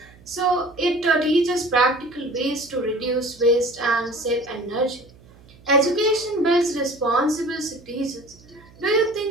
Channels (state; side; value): noise; right; hum, 25 dB below the sound